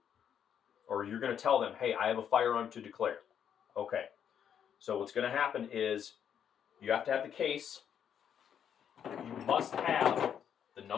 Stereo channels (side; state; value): right; quieter; 8.6 dB